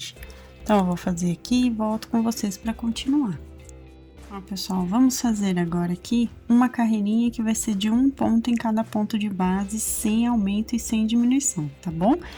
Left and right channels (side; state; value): both; identical; correlation 1.00